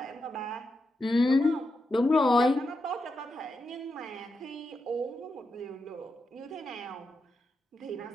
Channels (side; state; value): both; normal; correlation 0.86